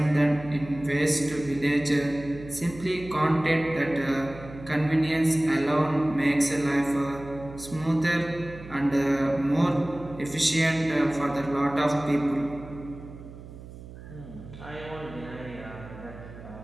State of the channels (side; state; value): right; noise; hum, 15 dB below the sound